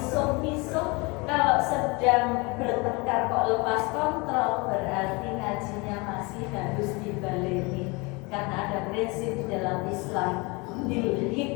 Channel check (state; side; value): quieter; right; 27.3 dB